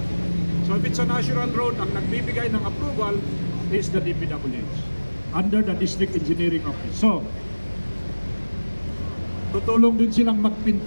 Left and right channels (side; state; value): both; inverted; correlation -1.00